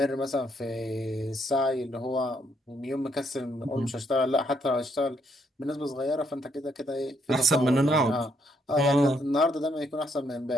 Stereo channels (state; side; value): normal; both; correlation 0.73